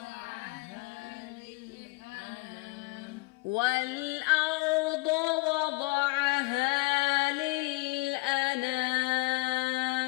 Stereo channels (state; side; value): quieter; right; 26.1 dB